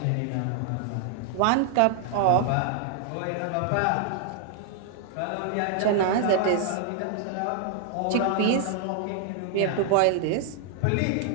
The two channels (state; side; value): different; both; correlation 0.00